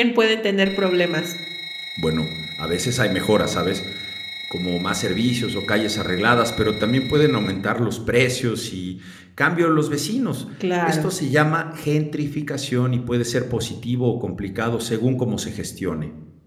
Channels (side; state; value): both; identical; correlation 1.00